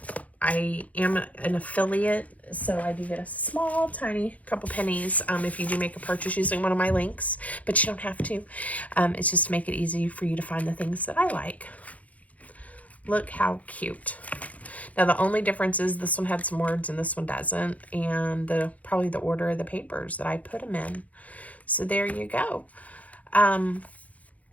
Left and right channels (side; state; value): right; late; 0.070 ms